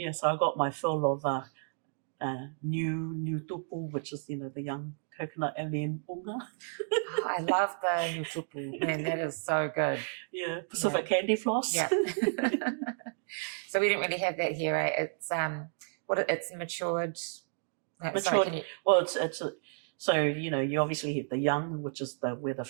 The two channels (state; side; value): silent; left; digital silence